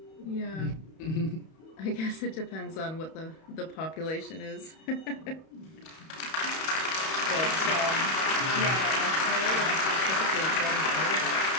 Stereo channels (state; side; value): late; right; 31 ms